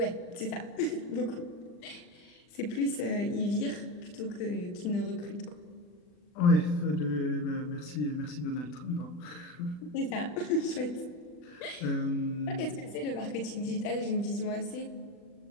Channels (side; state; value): right; late; 40 ms